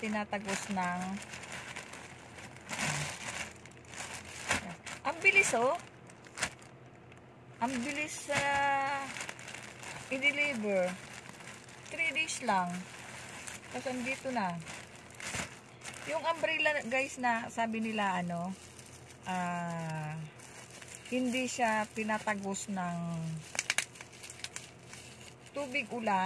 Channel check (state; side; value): identical; both; correlation 1.00